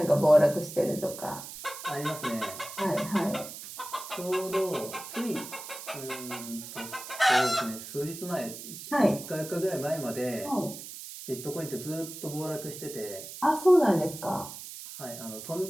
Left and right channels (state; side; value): noise; right; hiss, 11 dB below the sound